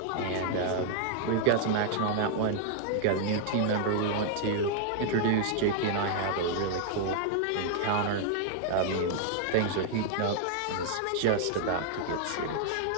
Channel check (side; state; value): both; different; correlation 0.00